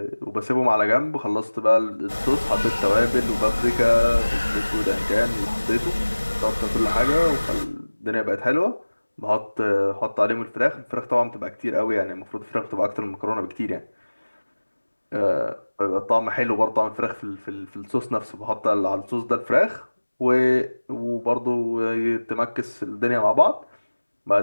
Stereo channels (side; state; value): both; inverted; correlation -1.00